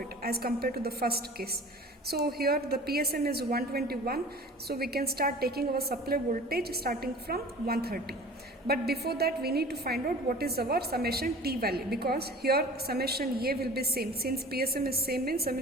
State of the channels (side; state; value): both; normal; correlation 0.42